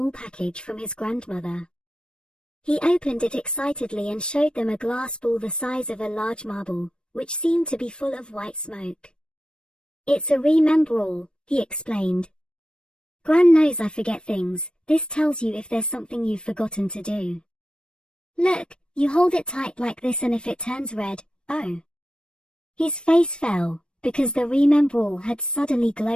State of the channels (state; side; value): late; right; 0.054 ms